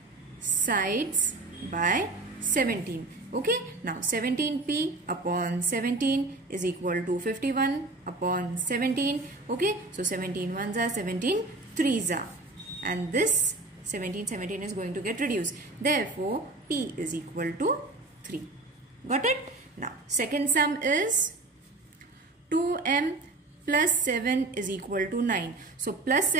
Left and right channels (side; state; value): left; quieter; 3.1 dB